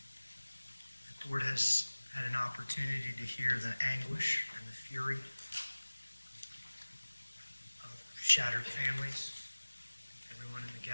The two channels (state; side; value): inverted; both; correlation -1.00